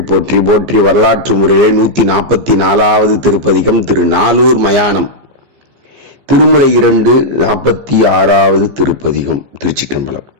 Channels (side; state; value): left; late; 15 ms